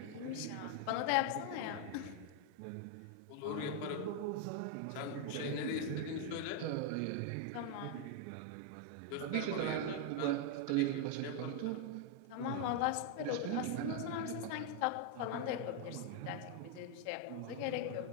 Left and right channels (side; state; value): both; different; correlation 0.01